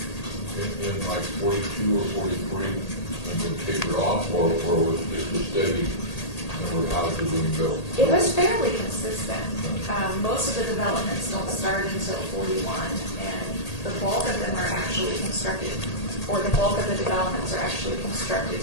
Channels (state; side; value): late; right; 1.8 ms